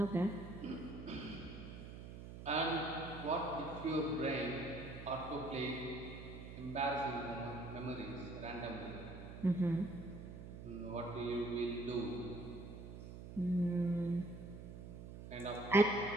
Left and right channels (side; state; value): right; noise; hum, 11 dB below the sound